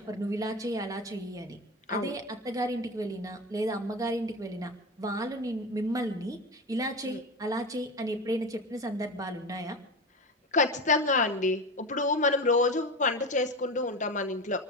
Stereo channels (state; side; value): normal; both; correlation 0.24